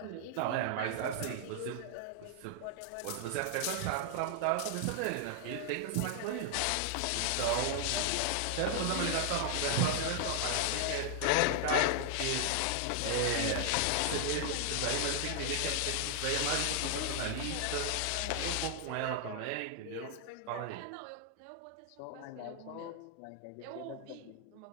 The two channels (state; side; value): different; both; correlation 0.00